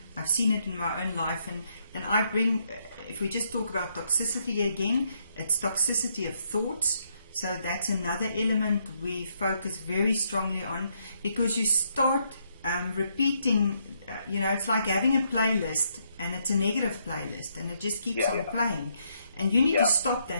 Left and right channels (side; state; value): both; inverted; correlation -0.75